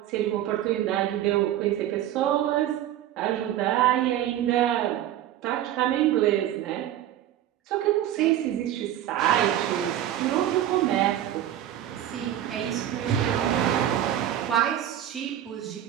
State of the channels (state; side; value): quieter; left; 12.0 dB